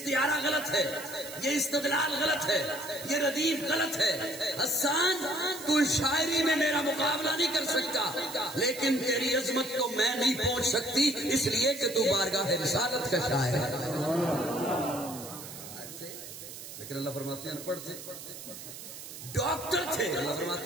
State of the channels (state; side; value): noise; right; hiss, 12 dB below the sound